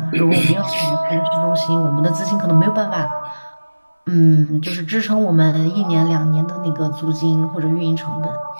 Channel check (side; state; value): both; inverted; correlation -1.00